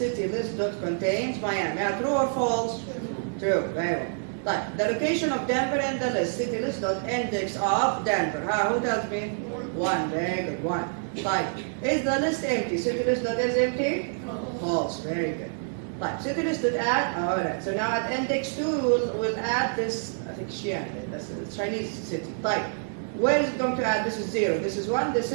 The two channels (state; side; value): silent; left; 60 dB below the other